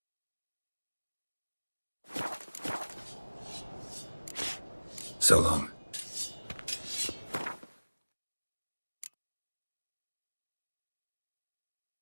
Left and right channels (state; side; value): inverted; both; correlation -1.00